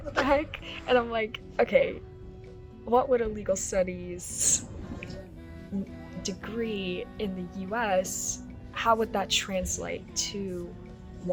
the heck? And I'm like, okay, what would a legal studies degree in the US, how would that translate to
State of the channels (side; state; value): both; identical; correlation 1.00